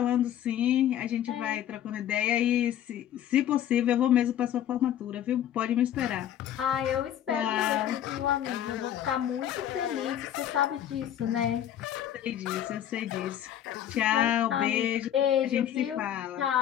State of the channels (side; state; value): right; quieter; 10.9 dB